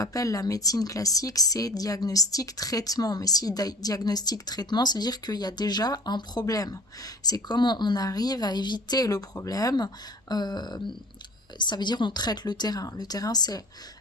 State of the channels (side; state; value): both; normal; correlation 0.46